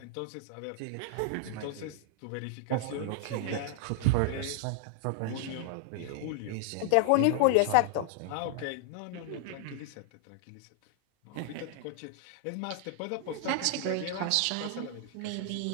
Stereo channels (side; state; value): both; different; correlation -0.01